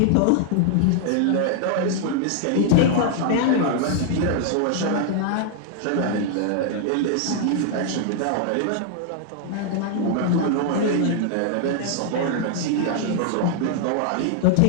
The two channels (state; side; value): different; both; correlation 0.00